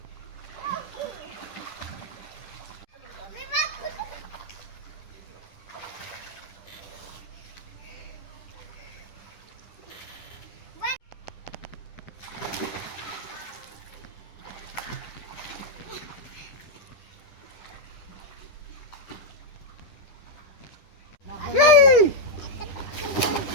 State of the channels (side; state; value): right; late; 10 ms